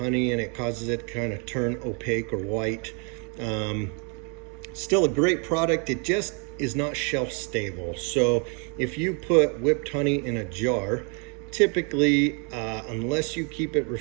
and it causes it to kind of turn opaque or white. Still a great product. It just is not shelf stable. So if you put whipped honey in a jar, typically, unless you keep it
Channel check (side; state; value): left; quieter; 36.3 dB